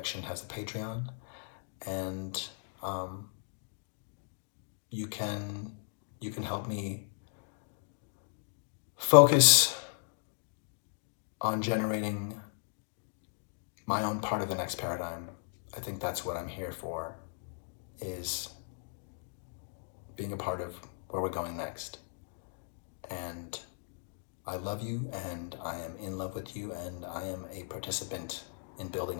has a Patreon, and you can help me focus on generating my own part of the next paradigm. I think that's what I'm here for, is being a part of where we're going next. And I love you, and I am in love with you, and I am a participant in building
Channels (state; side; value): silent; right; digital silence